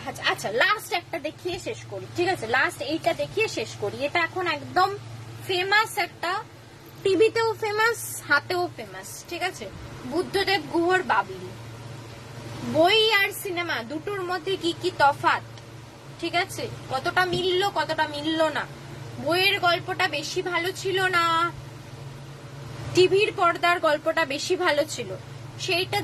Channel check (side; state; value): both; identical; correlation 1.00